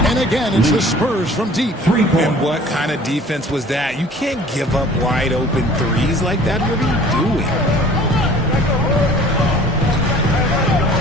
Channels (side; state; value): both; normal; correlation 0.49